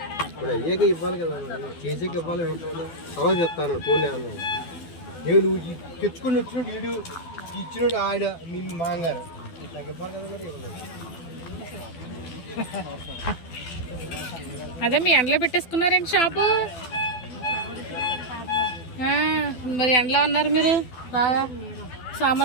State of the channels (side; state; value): right; late; 12 ms